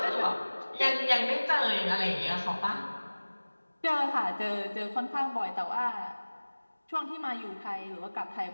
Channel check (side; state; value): both; inverted; correlation -1.00